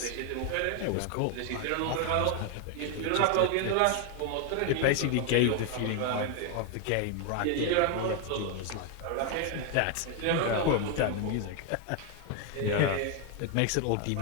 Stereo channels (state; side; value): different; both; correlation 0.01